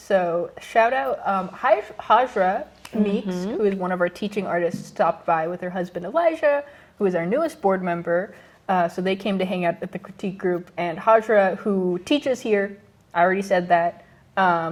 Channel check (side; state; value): both; identical; correlation 1.00